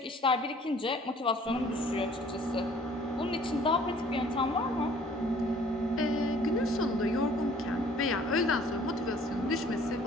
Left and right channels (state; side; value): normal; both; correlation 0.55